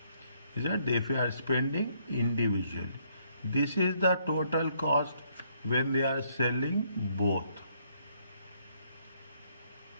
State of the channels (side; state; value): both; inverted; correlation -0.70